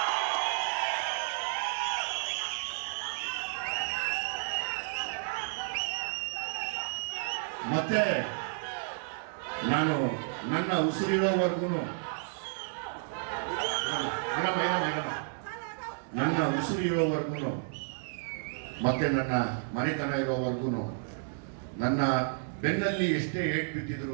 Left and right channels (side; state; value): left; silent; digital silence